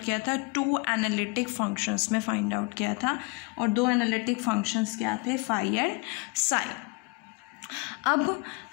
किया था, टू एनालिटिक फंक्शंस में फाइंड आउट किया था। और दो एनालिटिक फंक्शंस क्या थे, फाई एंड साई। अब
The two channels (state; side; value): quieter; right; 26.4 dB